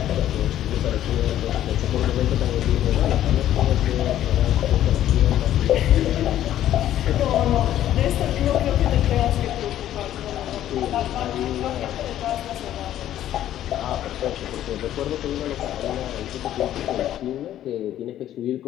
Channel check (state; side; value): quieter; right; 12.1 dB